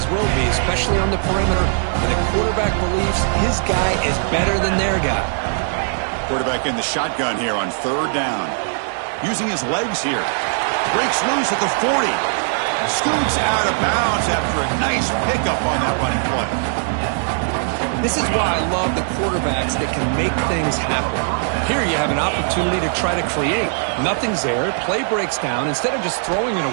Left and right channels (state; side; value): silent; left; digital silence